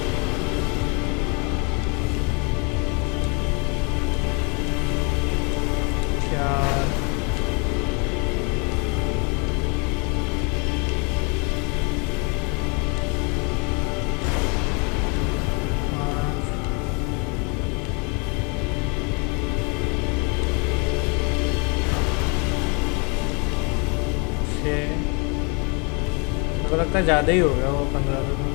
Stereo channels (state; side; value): quieter; right; 33.3 dB